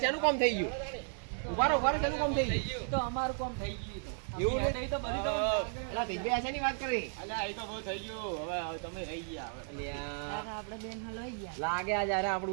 શેનું કામ થઈ ગયું? ઉભા રહો શેનું કામ થઈ ગયું? તો અમારું કામ થઈ ગયું તો. એવું ને? નહીં તો બધી તો એટલે તેજભાઈ શેની વાત કરી? અલ્યા એ તો બહુ થઈ ગયું. હવે તમે રહી ગયા હવે. અલ્યા કાકા આપણે બેન હલવાઈ ગયા. લાગે આ જ્યારે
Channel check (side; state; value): left; silent; 55 dB below the other